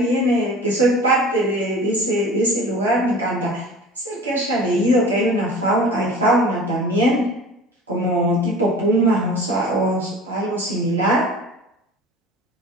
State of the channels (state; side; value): normal; both; correlation 0.40